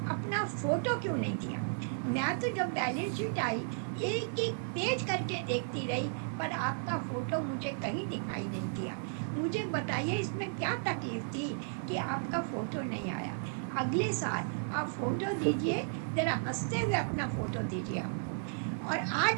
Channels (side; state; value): left; silent; digital silence